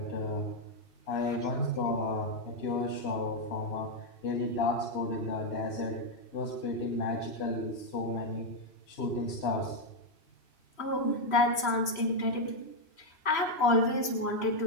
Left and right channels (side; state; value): right; late; 3.0 ms